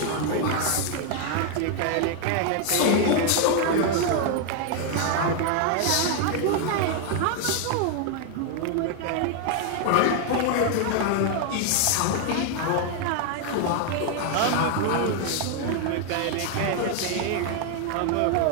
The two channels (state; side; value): different; both; correlation 0.01